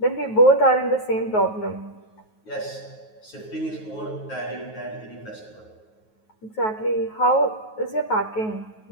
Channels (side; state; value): right; late; 9.3 ms